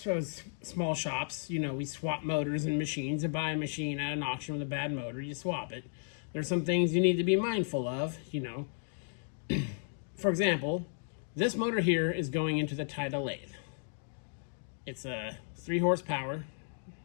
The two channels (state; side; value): silent; right; digital silence